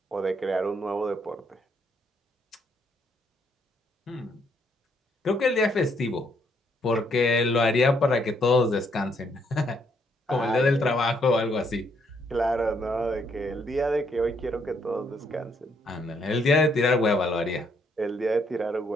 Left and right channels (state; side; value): normal; both; correlation 0.71